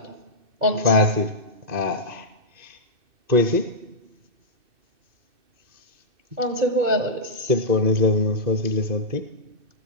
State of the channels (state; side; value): late; left; 2.6 ms